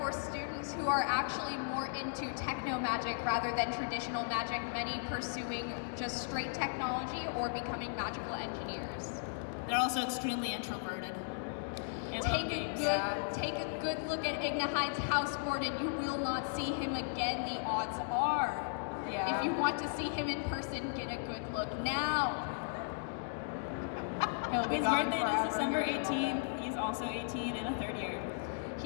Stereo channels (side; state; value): right; silent; digital silence